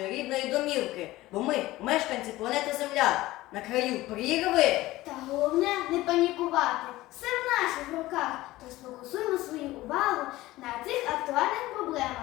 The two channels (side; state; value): right; quieter; 17.6 dB